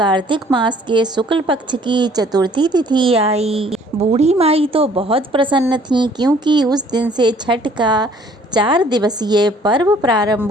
मास के शुक्ल पक्ष की चतुर्थी तिथि आई, बूढ़ी माई तो बहुत प्रसन्न थी क्योंकि उस दिन से छठ का 4 दिवसीय पर्व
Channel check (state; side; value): normal; both; correlation 0.58